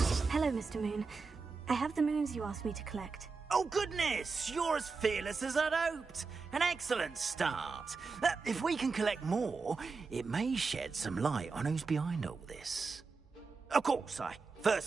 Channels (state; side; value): quieter; left; 4.5 dB